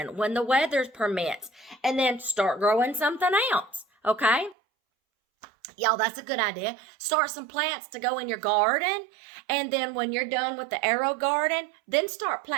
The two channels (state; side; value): drops out; left; at 4.5 s